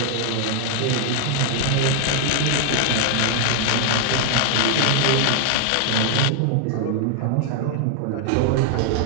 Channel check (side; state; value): both; different; correlation 0.00